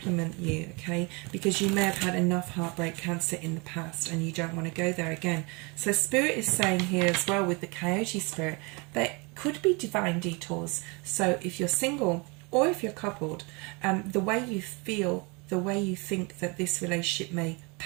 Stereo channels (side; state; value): left; quieter; 29.4 dB